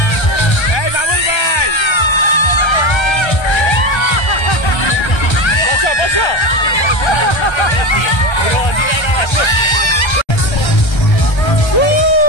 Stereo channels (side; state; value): right; late; 1.3 ms